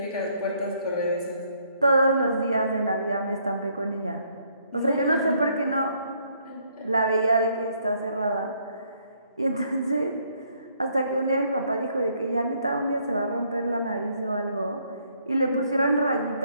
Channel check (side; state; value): both; inverted; correlation -0.68